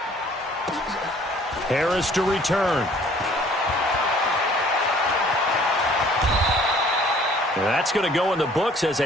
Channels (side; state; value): both; normal; correlation 0.56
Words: Harris to return. That's going to go in the books as